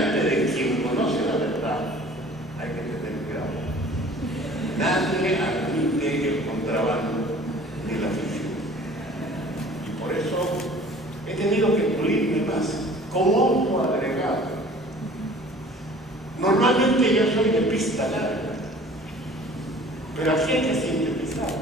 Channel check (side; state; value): both; normal; correlation 0.48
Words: de quien conoce la verdad hay que tener cuidado. Nadie admite el contrabando ni la ficción. Y por eso he tenido que pulirme más como otro agregado. Normalmente yo soy de pista larga, pero aquí hay que sintetizar.